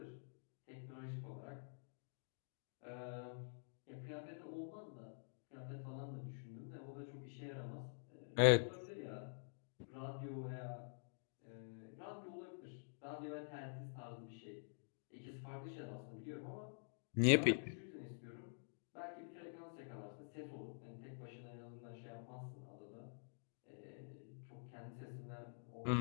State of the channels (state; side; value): silent; right; digital silence